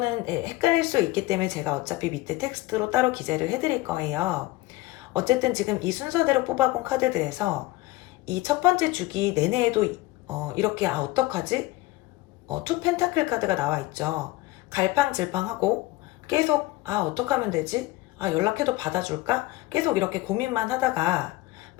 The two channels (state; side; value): quieter; right; 18.6 dB